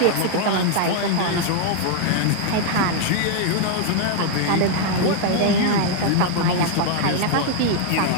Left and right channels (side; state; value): both; different; correlation 0.00